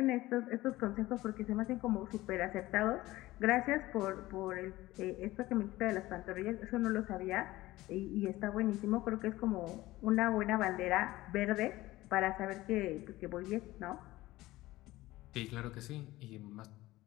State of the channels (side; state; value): right; quieter; 17.7 dB